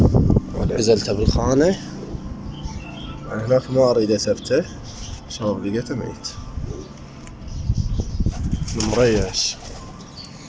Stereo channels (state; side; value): identical; both; correlation 1.00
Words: عزلته بالخانة. أنا هناك ما أريد أثبته، شباب لقيته ميت مريش.